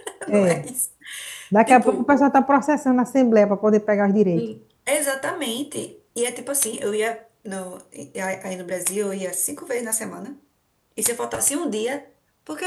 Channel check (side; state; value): both; identical; correlation 1.00